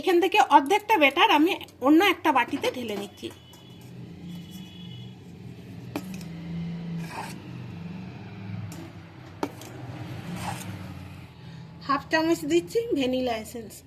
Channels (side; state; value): both; identical; correlation 1.00